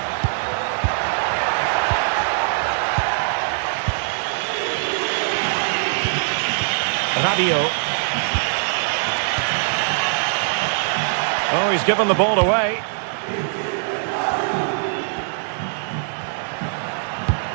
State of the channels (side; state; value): left; silent; digital silence